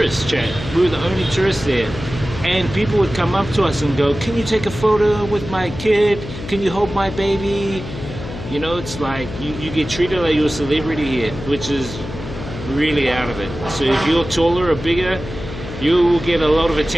chat. We were the only tourists there, and people would come up to us and go, "Can you take a photo with my kid? Can you hold my baby?" You know, it's like you get treated like you're a celebrity here, which is really out of it. So if you're taller or bigger, you will get a lot of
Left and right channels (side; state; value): left; noise; hum, 10 dB below the sound